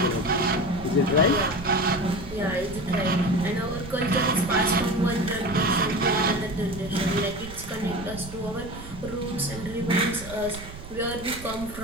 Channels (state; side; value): noise; right; rumble, 13 dB below the sound